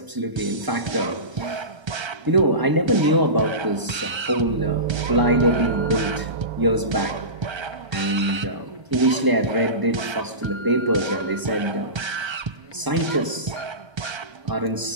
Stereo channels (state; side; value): late; left; 1.0 ms